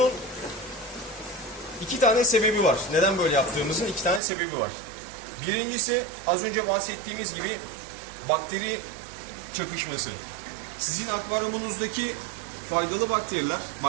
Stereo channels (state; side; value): drops out; left; at 4.2 s